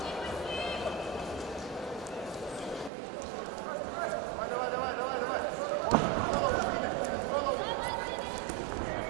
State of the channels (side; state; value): left; drops out; at 2.9 s